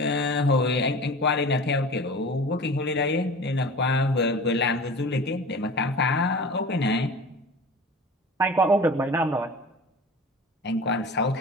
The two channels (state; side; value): normal; both; correlation 0.37